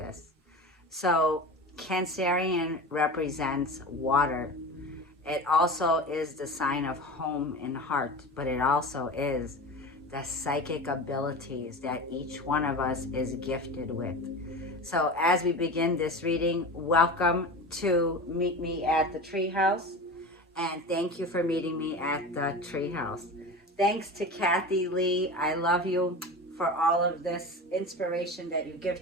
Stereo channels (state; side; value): normal; both; correlation 0.30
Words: So Cancerian represents water. It also is the sign of home and heart, but it also is the psychic abilities that each one of us is gifted with. So as we begin this reading, welcome to meet me at the Treehouse, and thank you for meeting me at the Treehouse. Thanks to Kathy Lee. I love you for all of this inspiration that you